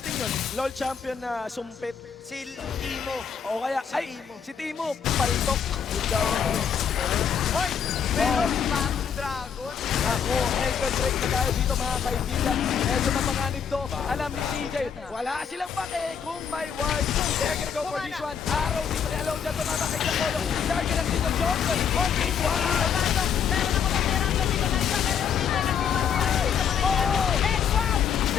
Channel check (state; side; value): quieter; right; 7.4 dB